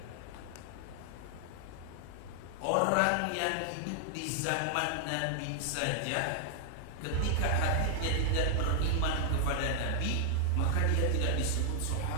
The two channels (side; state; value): both; different; correlation -0.01